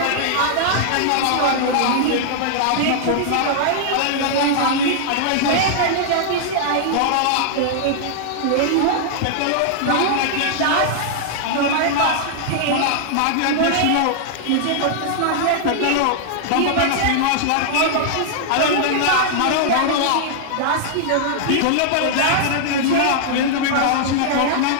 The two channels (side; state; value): both; different; correlation -0.01